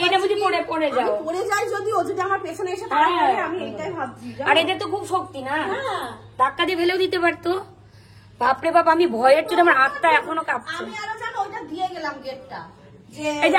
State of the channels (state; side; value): identical; both; correlation 1.00